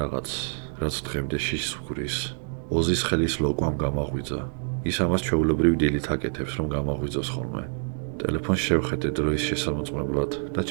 რაც დღემდე შიშს ვგრის. ოზის ხელის ლოკვამ გამაღვიძა. ის ამას ჩვეულებრივ დილით აკეთებს, რომ გამაღვიძოს ხოლმე. ტელეფონს შევხედე დროის შესამოწმებლად და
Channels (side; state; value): left; silent; digital silence